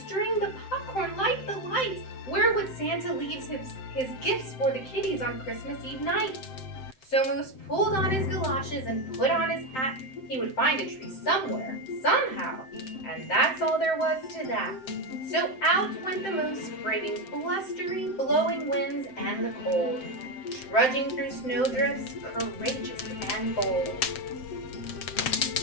the popcorn, light the lights? Where would Santa leave his gifts for the kiddies on Christmas Eve night? So Moose pulled on his galoshes and put on his hat. He would find a tree somewhere, somehow, and that's all there was to that. So out went the Moose, braving blustery, blowing winds and the cold, trudging through snowdrifts, courageous and bold.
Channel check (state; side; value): late; right; 7.7 ms